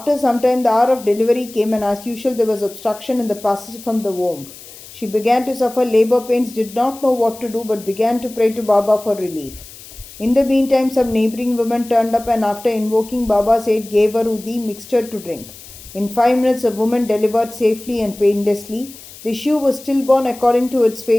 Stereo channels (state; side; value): noise; left; hiss, 18 dB below the sound